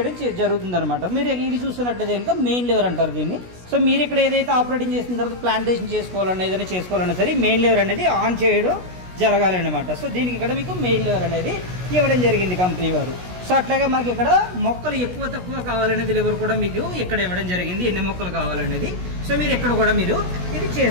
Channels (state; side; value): late; left; 16 ms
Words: జరుగుతుందన్నమాట. మీరు ఇది చూస్తున్నట్లయితే కనుక మెయిన్ లివర్ అంటారు దీన్ని. సో మీరు ఇక్కడ ఏదైతే ఆపరేటింగ్ చేసిన తర్వాత ప్లాంటేషన్ చేసుకోవాలన్నా, ఏదైనా చేసుకోవాలన్నా సరే మెయిన్ లివర్ అనేది ఆన్ చేయడం జరగాలి అనమాట. సో దీనికి ఇక్కడ మీకు మెయిన్ లివర్ అనేది ఇవ్వడం జరిగింది కంపెనీ వారు. సో అట్లాగే మనకి ఇక్కడ మొక్కలు ఎక్కువ తక్కువ కావాలనేది లివర్ కూడా మీకు ఇక్కడ ఇవ్వడం జరిగింది, ఎన్ని మొక్కలు కావాలనేది. సో మీరు ఇక్కడ కూడా మీరు ఇది